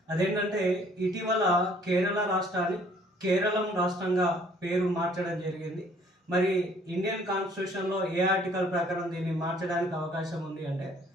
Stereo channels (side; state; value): both; normal; correlation 0.59